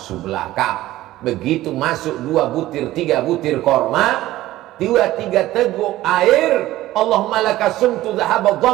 belaka. Begitu masuk 2 butir 3 butir korma, 2-3 teguk air, Allahumma laka sumtu dhahaba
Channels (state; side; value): quieter; left; 15.8 dB